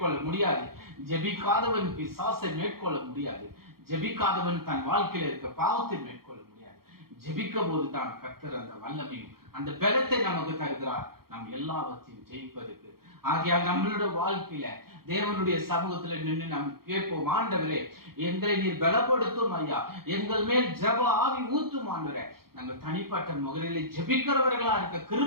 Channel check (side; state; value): left; late; 0.94 ms